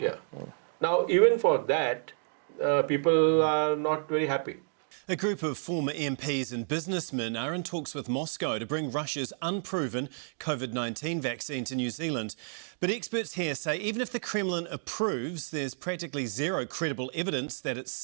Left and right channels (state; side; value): silent; left; 58 dB below the other